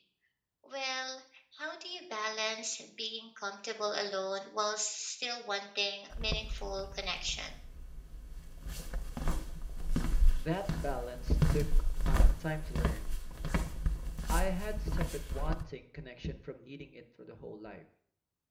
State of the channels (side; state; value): both; identical; correlation 1.00